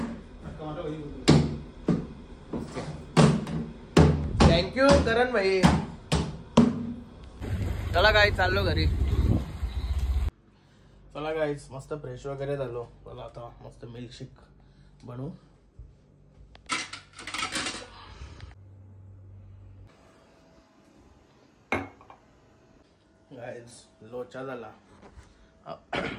थँक्यू करण भाई. चला काय चाललो घरी. चला गाईज मस्त फ्रेश वगैरे झालो. चला आता मस्त मिल्कशेक बनवू. गाईज लोचा झाला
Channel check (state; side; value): identical; both; correlation 1.00